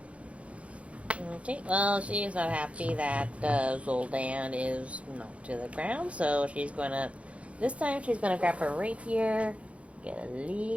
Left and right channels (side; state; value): left; late; 0.063 ms